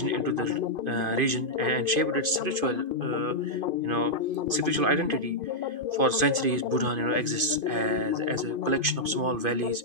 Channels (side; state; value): left; late; 2.5 ms